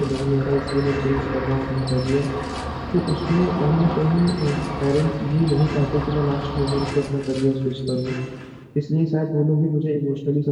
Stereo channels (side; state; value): both; identical; correlation 1.00